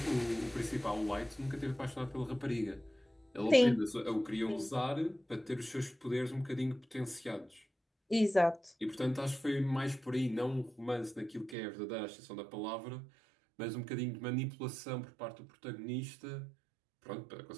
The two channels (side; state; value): left; drops out; at 11.6 s